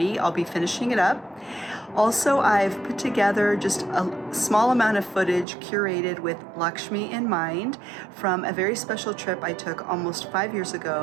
I'll be finishing it up. Also, I've put together just a small amount of footage curated with Lakshmi in mind from a very special trip I took almost 5 years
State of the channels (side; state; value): left; drops out; at 5.5 s